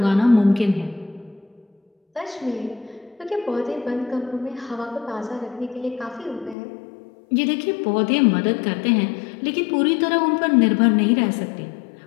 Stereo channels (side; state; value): right; drops out; at 6.6 s